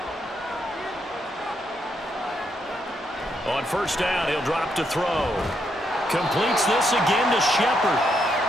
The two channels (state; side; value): normal; both; correlation 0.78